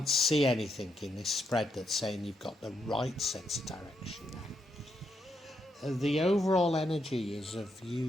see anything in this spread that's saying you've got the right sense of direction now. The overall energy is of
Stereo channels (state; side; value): normal; both; correlation 0.80